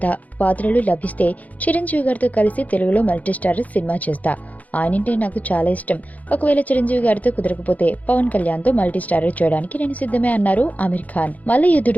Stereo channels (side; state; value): right; late; 0.075 ms